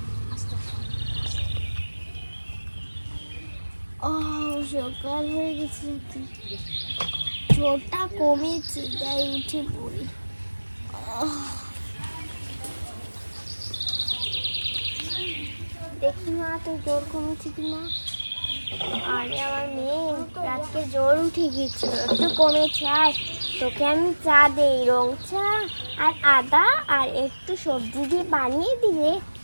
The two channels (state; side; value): inverted; both; correlation -1.00